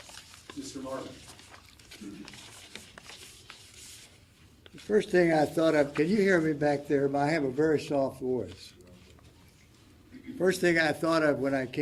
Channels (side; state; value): both; identical; correlation 1.00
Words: Mr. Marvin. First thing I thought of, can you hear me back there? I have a very soft voice. First thing I thought of when I